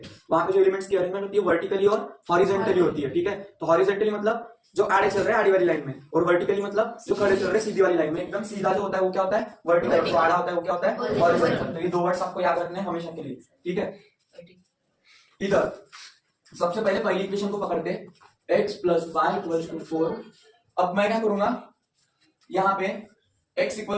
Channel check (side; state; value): both; identical; correlation 1.00